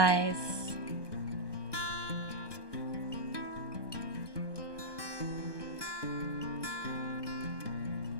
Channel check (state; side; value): late; right; 1.2 ms